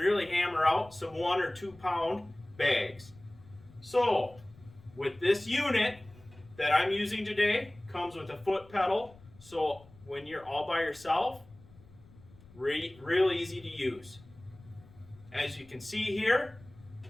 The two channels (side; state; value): left; noise; rumble, 23 dB below the sound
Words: hammer out some 1 or 2 pound bags. So, with this unit that I'm using today, comes with a foot pedal, so when you're all by yourself, real easy to use. As you can see here,